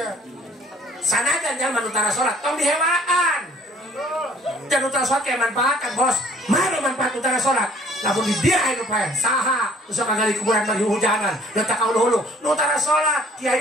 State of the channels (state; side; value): normal; both; correlation 0.57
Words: Sanajan jangan utara sholat, tong dihewaan. Dan utara sholat kayak manfaatkan, Bos. Mana manfaat utara sholat? Namun di dia itu pak, saha, usah kagak di kuburan bagi hujanan, letak kau dulu, utara sholat, kiai